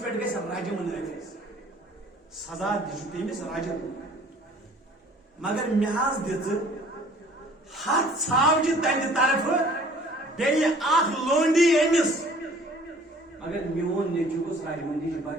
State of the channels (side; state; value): both; normal; correlation 0.53